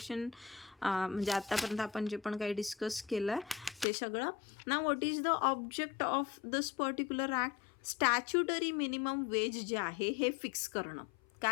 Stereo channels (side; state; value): right; drops out; at 3.9 s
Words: म्हणजे आतापर्यंत आपण जे पण काही डिस्कस केलं ते सगळं. ना what is the object of this particular act? Statutory minimum wage जे आहे हे फिक्स करणं.